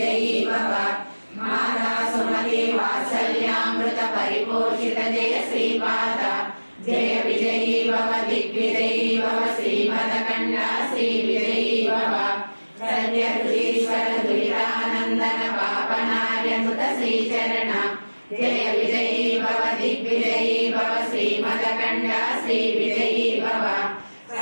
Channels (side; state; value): both; inverted; correlation -1.00